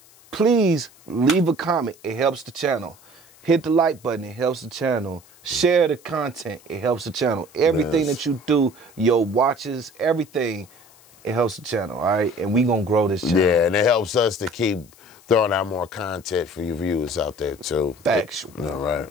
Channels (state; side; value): noise; left; hiss, 26 dB below the sound